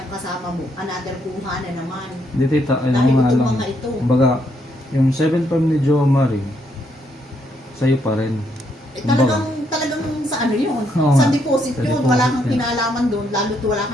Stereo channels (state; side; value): normal; both; correlation 0.74